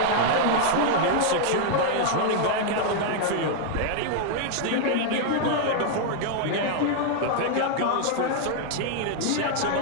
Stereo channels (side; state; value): both; different; correlation 0.00